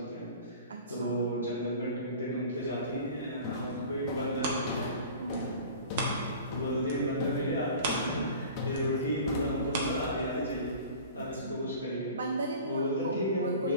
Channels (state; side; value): inverted; both; correlation -0.41